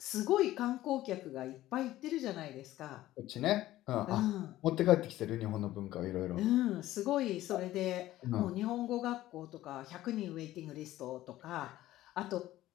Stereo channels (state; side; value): quieter; right; 15.1 dB